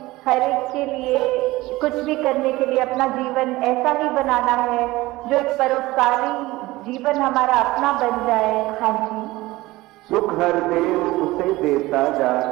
हर एक के लिए कुछ भी करने के लिए अपना जीवन ऐसा ही बनाना है जो एक परोपकारी जीवन हमारा अपना बन जाए। हाँ जी, सुख हर देव उसे देता जा,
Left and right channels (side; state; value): left; quieter; 19.1 dB